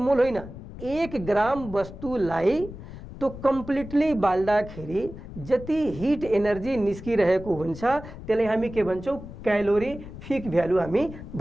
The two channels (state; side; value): noise; left; rumble, 13 dB below the sound